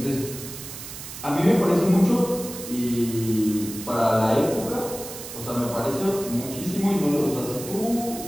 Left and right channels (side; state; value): right; noise; hiss, 11 dB below the sound